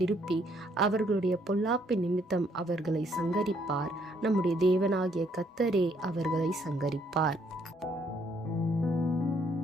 அவர்களுடைய பொல்லாப்பின் நிமித்தம் அவர்களை சங்கரிப்பார். நம்முடைய தேவனாகிய கர்த்தரே அவர்களை சங்கரிப்பார்.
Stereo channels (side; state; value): both; normal; correlation 0.68